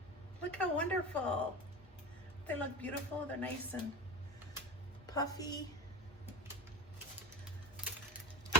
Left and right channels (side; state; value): both; normal; correlation 0.26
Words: Look how wonderful. They look beautiful, they're nice and puffy.